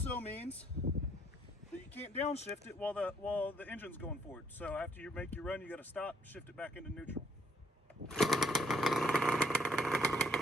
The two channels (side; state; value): both; normal; correlation 0.66